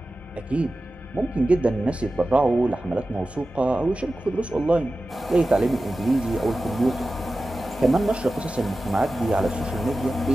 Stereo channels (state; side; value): normal; both; correlation 0.95